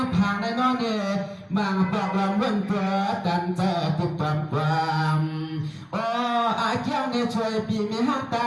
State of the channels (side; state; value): both; identical; correlation 1.00